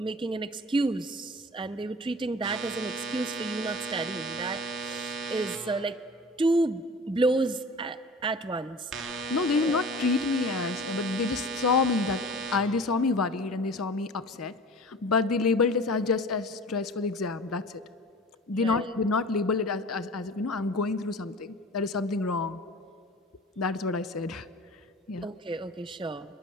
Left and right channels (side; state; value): both; normal; correlation 0.40